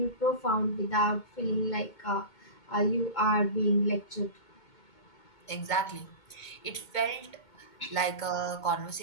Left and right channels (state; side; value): late; right; 2.2 ms